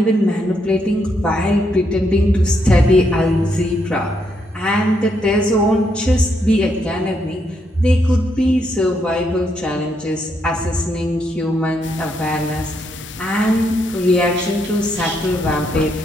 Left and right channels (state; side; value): normal; both; correlation 0.77